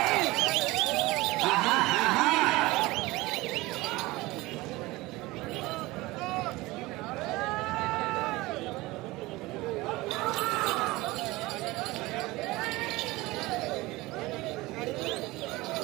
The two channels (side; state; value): left; quieter; 20.6 dB